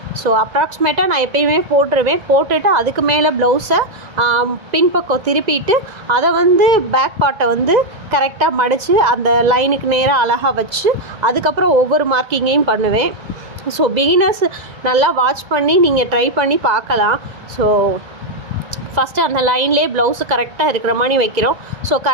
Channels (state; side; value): late; left; 2.0 ms